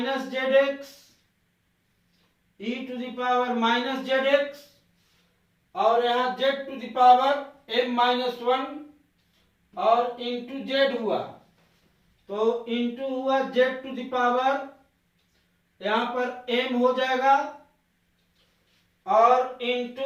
zx, e to the power minus zx, और यहाँ z to the power m minus 1, और इंटू z हुआ, तो इंटू हुआ z टू द पावर, यहाँ पर m हो जाएगा, और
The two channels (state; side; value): identical; both; correlation 1.00